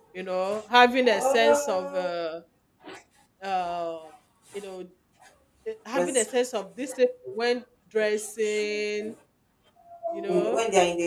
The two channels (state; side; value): identical; both; correlation 1.00